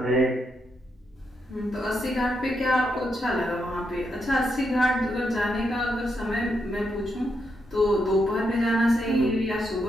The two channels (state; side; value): normal; both; correlation 0.81